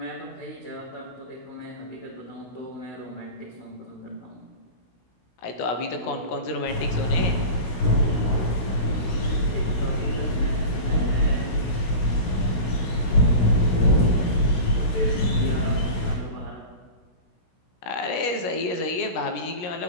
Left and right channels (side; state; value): right; late; 17 ms